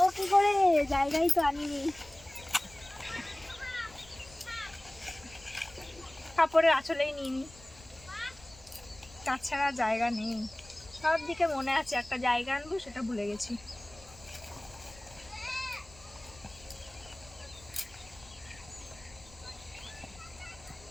কি করে, জায়গায় তো আনিনি। কাপড়ের আঁচলেই নিইনি, তাছাড়া জায়গা নেই। সব দিকে মনে আছে একটা জায়গা আনবো, সেটা ভুলে গেছি।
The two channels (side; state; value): left; noise; rumble, 22 dB below the sound